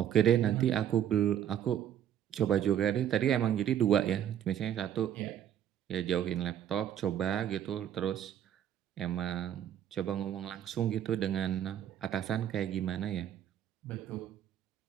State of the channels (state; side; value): quieter; left; 10.2 dB